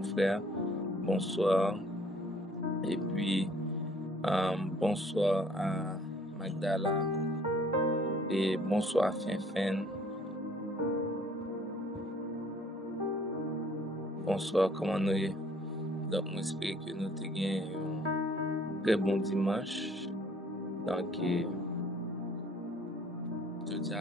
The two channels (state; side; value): normal; both; correlation 0.58